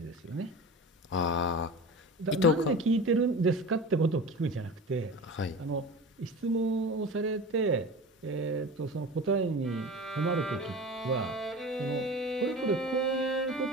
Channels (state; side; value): normal; both; correlation 0.33